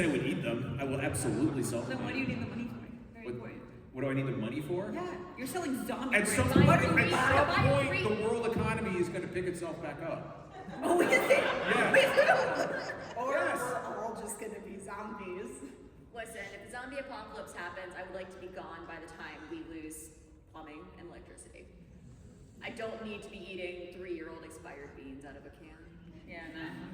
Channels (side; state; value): both; identical; correlation 1.00